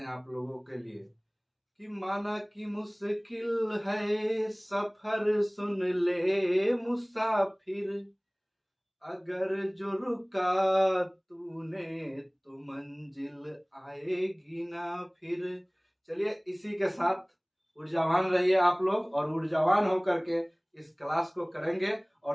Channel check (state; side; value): identical; both; correlation 1.00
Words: आप लोगों के लिए कि माना कि मुश्किल है सफर, सुन ले मुसाफिर, अगर जो रुका तूने तो मंजिल आएगी ना फिर। चलिए इसी के साथ ऊर्जावान रहिए आप लोग, और ऊर्जावान होकर के इस क्लास को करेंगे